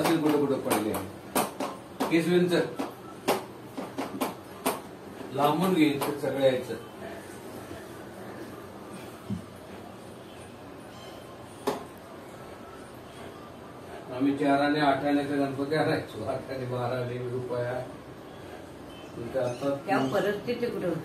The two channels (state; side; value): identical; both; correlation 1.00